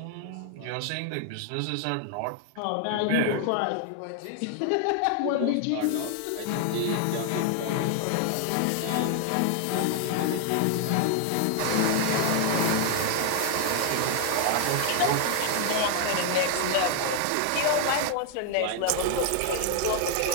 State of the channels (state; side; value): different; both; correlation 0.00